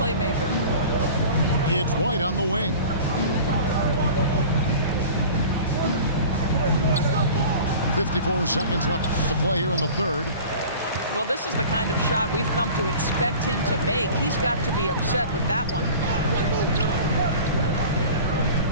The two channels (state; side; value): inverted; both; correlation -0.40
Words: It's White on the wing. .54 seconds left to play here in the third. Well, this is the kind of shot we've come to expect him to make. He's got to be upset with that one.